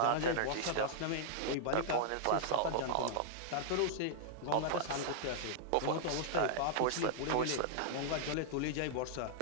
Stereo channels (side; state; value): both; different; correlation -0.01